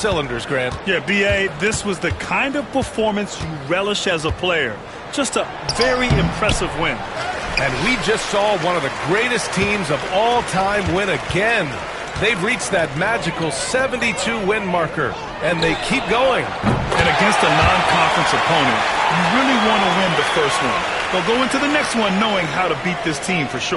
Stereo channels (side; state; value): both; identical; correlation 1.00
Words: Grant. Yeah, B.A., this was the kind of performance you relish as a player. Just a very impressive win. And we just saw one of the greatest teams of all time win again. They've reached that magical 72-win marker, and they keep going. And against a non-conference opponent, you really want to win the first one. They'll go into the next one knowing how to beat this team for